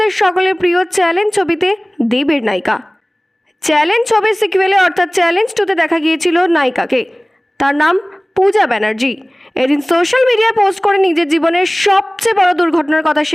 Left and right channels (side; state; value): both; normal; correlation 0.98